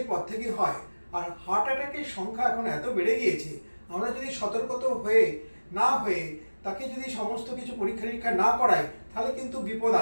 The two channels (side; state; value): both; inverted; correlation -1.00